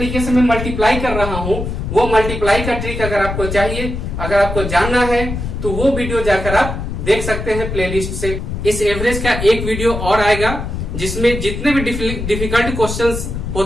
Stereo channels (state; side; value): noise; left; rumble, 5 dB below the sound